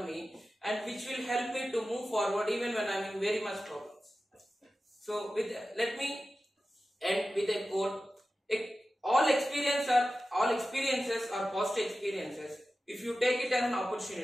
me, and which will help me to move forward even when I am in very much problems. So let me end with a quote. All experiences are positive experiences if you take it as an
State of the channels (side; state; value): both; normal; correlation 0.94